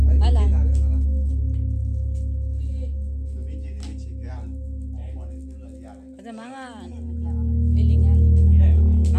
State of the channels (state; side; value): identical; both; correlation 1.00